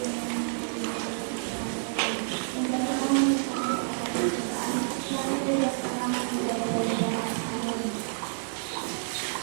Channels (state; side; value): silent; left; digital silence